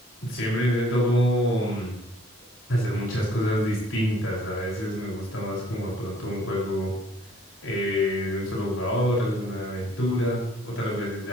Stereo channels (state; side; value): normal; both; correlation 0.60